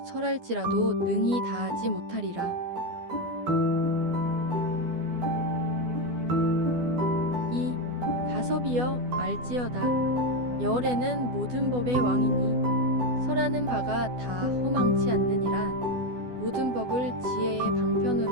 설할지라도 능히 다하지 못하리라. 이 가섭이여, 알지어다. 열에는 모든 법의 왕이니 설하는 바가 다 허망치 않느니라. 모든 법을 지혜의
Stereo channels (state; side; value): late; left; 12 ms